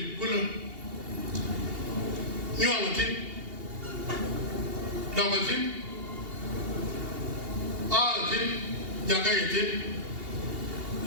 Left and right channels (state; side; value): late; left; 2.8 ms